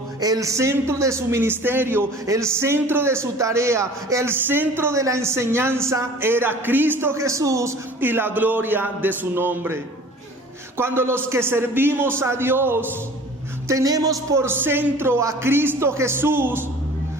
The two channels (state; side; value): normal; both; correlation 0.46